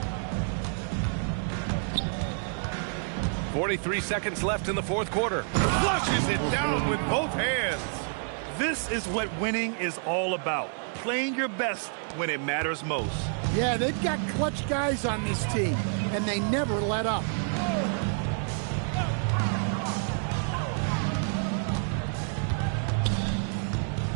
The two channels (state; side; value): silent; left; 59 dB below the other